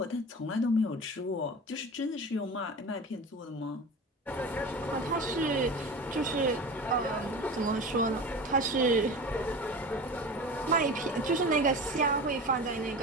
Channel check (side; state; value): both; normal; correlation 0.32